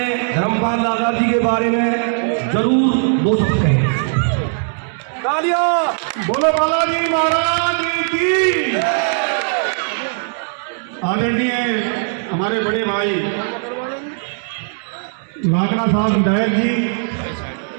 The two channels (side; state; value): left; silent; 67 dB below the other